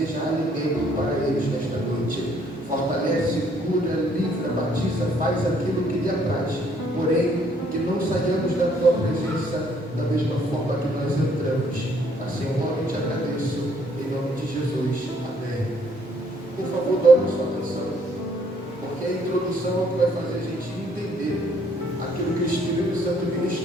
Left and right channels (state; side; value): normal; both; correlation 0.65